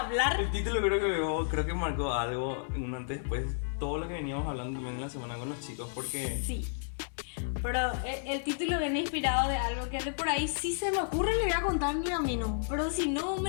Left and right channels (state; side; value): silent; right; digital silence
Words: hablar. El título creo que marcó algo un antes después, todo lo que veníamos hablando también en la semana con los chicos, porque Sí. Pero el título viene inspirado de algo que de por ahí si se me ocurre le voy a contar mi camino. Pero si no,